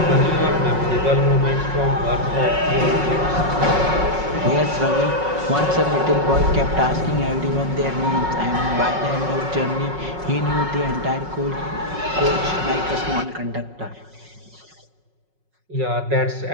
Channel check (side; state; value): left; late; 5.4 ms